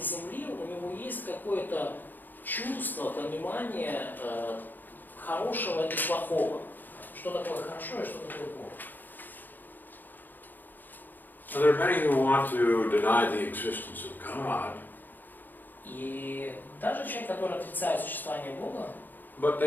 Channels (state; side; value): late; right; 0.088 ms